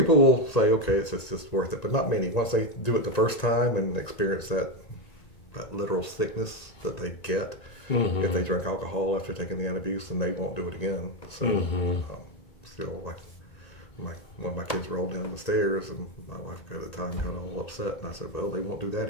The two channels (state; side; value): late; right; 1.9 ms